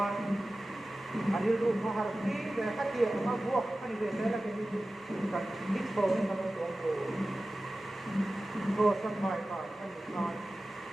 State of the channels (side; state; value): both; normal; correlation 0.95